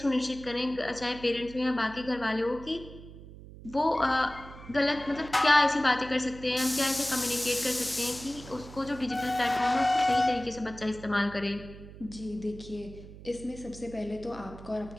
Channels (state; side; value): noise; right; hum, 16 dB below the sound